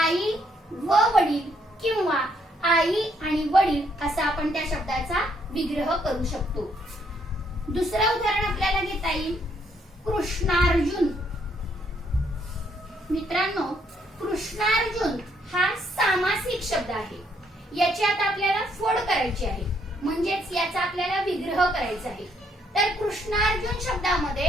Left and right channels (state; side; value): normal; both; correlation 0.71